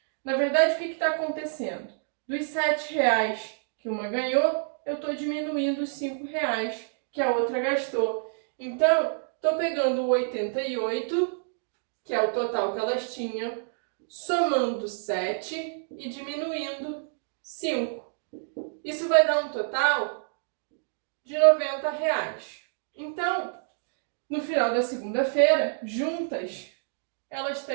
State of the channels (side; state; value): left; silent; digital silence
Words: na verdade, o que está acontecendo? Dos R$ 7 que uma ganhou, eu estou diminuindo os R$ 5 que a outra gastou. Então, estou pegando o 88, que é o total que elas tinham, somando 7 e diminuindo 5. Isso vai dar um total de R$ 90. Então, no final da segunda-feira, juntas, elas